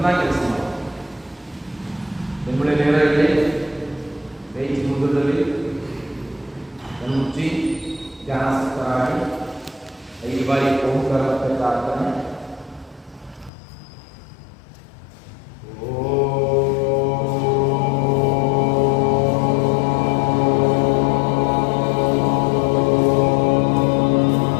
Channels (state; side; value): drops out; right; at 13.5 s